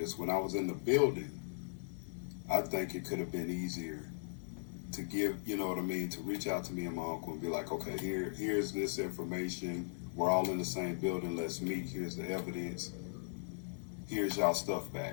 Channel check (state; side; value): silent; right; digital silence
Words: When I was in the building, I think it could have been easier to give, you know what I mean, to reach out to me and my uncle and be like, okay, here's this information. We're all in the same building. Let's meet. Here's the evidence. Here's y'all stuff